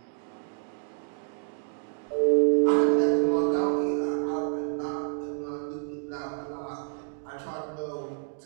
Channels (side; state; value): left; silent; digital silence